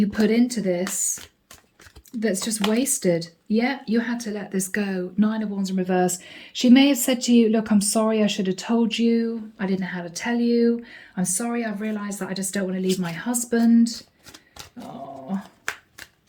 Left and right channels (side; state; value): both; identical; correlation 1.00